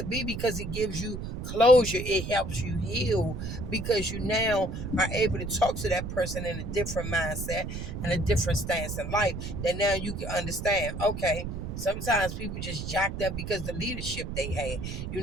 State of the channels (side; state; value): right; noise; rumble, 6 dB below the sound